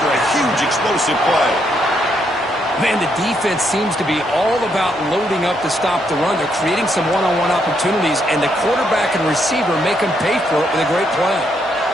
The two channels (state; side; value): normal; both; correlation 0.76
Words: a huge explosive play. Man, the defense seems to be all about loading up to stop the run. They're creating some one-on-one opportunities, and the quarterback and receiver make them pay for it with a great play.